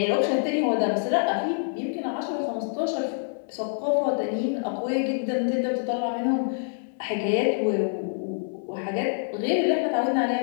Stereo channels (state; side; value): silent; right; digital silence